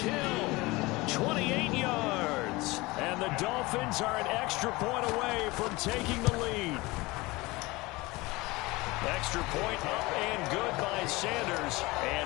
Hill, 28 yards. And the Dolphins are an extra point away from taking the lead. Extra point up and good by Sanders.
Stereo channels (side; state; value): right; quieter; 22.2 dB